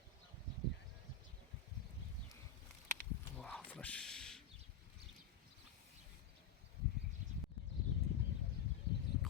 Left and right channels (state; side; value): quieter; right; 7.1 dB